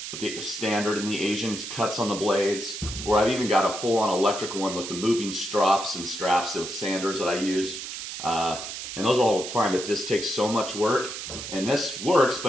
with the standard and the Asian cuts on the blades, or I've even got a full-on electric one with the moving straps with sanders that I use. And those are all fine, but this takes so much work. And this works,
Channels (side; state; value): right; noise; hiss, 8 dB below the sound